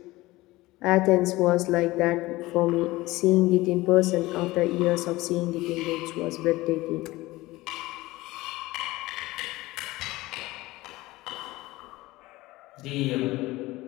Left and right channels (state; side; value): quieter; right; 19.3 dB